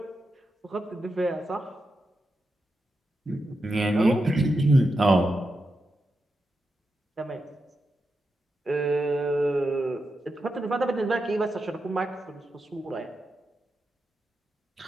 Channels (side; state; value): both; normal; correlation 0.88